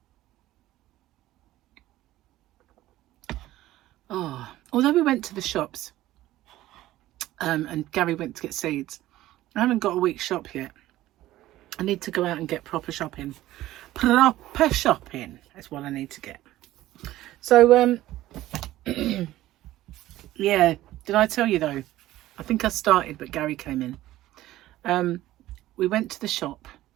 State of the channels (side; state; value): left; quieter; 15.3 dB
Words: Oh, although we went to the shops and Gary went to get seeds, I haven't got a week's shop yet. I need to go out and get proper shopping. Proper shopping is what I need to get. So yeah, did I tell you though? I think I started, but Gary came in. We went to the shop,